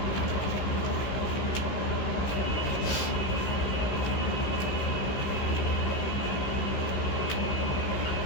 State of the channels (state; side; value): late; right; 15 ms